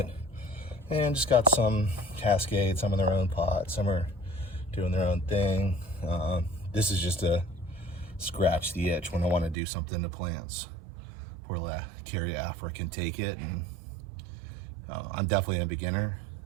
And just got some cascades, some in their own pots, some are doing their own thing. This is just to scratch the itch when I want to do something to plants. Poor Caryophyra can take it, and I'm definitely a beginner,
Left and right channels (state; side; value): drops out; left; at 9.6 s